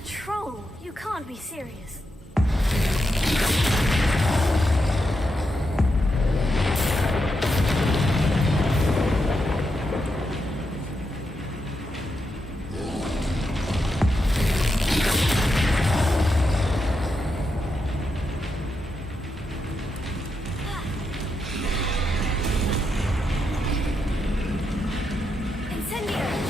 troll? You can't be serious.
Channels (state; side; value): normal; both; correlation 0.84